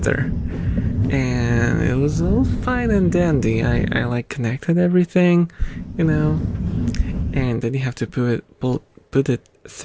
and it was all fine and dandy. I like connected everything, and then you have to put it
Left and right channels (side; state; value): both; identical; correlation 1.00